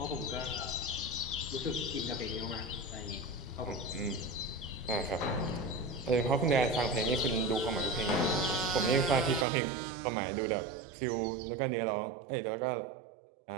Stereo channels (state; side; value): drops out; left; at 9.5 s